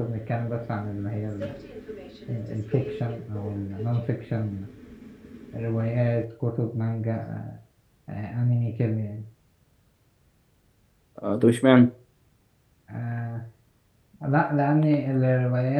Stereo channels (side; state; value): both; identical; correlation 1.00